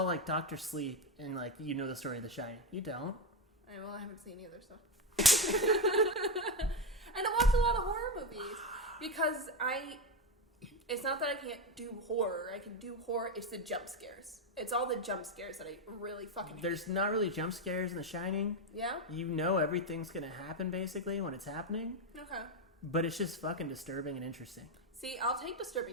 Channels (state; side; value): normal; both; correlation 0.10